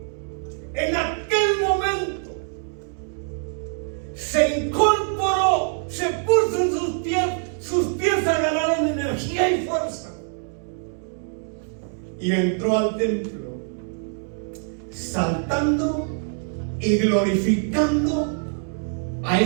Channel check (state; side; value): silent; left; 62 dB below the other